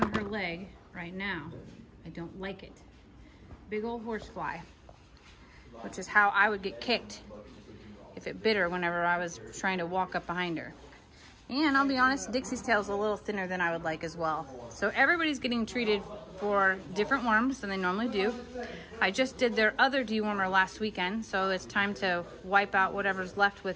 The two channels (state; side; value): identical; both; correlation 1.00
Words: her leg right now. I don't like it. Big old horse fly, which is how I would get kicked if it bit her whenever I was trying to walk up behind her. And I'll be honest, Dixie's tail is a little thinner than I would like as well. So everybody's getting treated for different worms than they normally do. I just did their other dewormer last weekend, so it's time to wipe out whatever's left